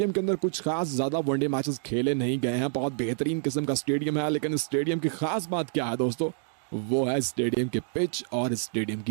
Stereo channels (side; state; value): left; silent; 60 dB below the other